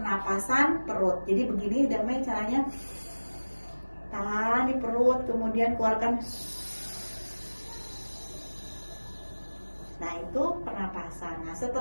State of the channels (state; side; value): inverted; both; correlation -1.00